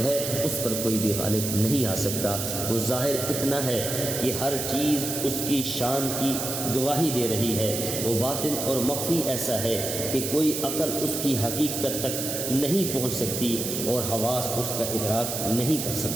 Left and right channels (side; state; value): right; noise; hiss, 3 dB below the sound